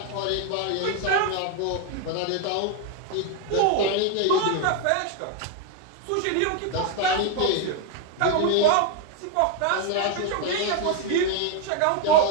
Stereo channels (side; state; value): both; different; correlation 0.01